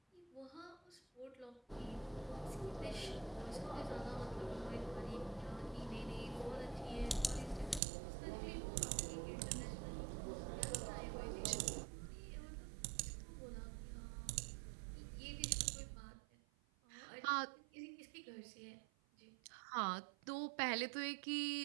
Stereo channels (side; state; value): left; drops out; at 7.8 s